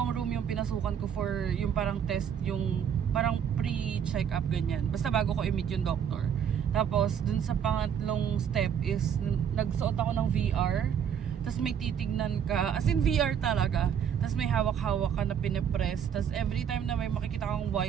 room yung pinasukan ko for yung parang test, yung parang pre-check-up ganyan. Basta bago ko i-meet yung doctor. Tapos, dun sa pangatlong step is, nagsuot ako ng VR. Tapos may titignan ka. As in VR talaga. Tapos may hawak-hawak ka na pinipress. Tapos every time na may makikita kang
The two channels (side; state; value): left; quieter; 8.3 dB